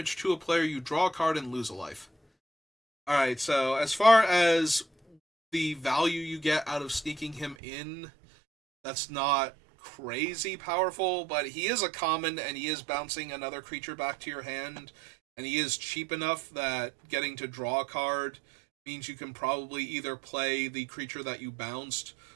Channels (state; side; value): drops out; left; at 7.6 s